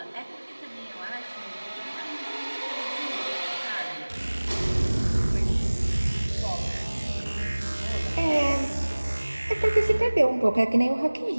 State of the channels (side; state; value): both; inverted; correlation -1.00